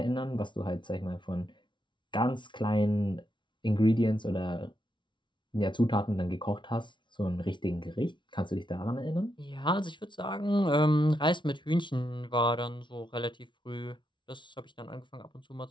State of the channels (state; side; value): late; right; 0.24 ms